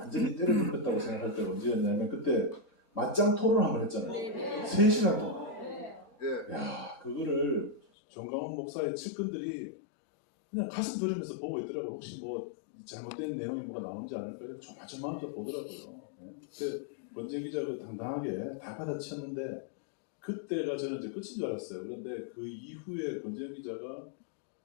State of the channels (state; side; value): drops out; right; at 7.8 s